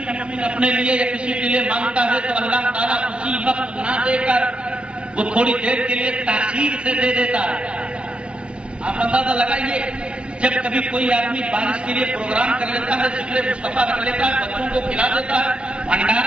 مومن اپنے لیے یا کسی کے لیے مانگتا ہے تو اللہ تعالیٰ اسی وقت نہ دے کر وہ تھوڑی دیر کے لیے تاخیر سے دے دیتا ہے۔ آپ اندازہ لگائیے، جب کبھی کوئی آدمی بارش کے لیے پروگرام کر لیتا ہے، ذکر مصطفیٰ رکھ لیتا ہے، بچوں کو کھلا دیتا ہے،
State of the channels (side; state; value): left; late; 0.058 ms